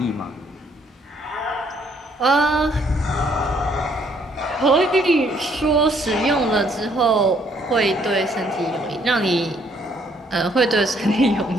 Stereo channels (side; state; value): both; normal; correlation 0.66